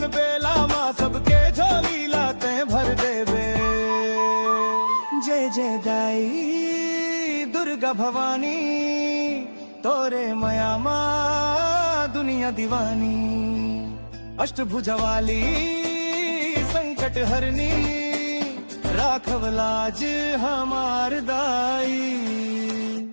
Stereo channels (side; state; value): both; inverted; correlation -1.00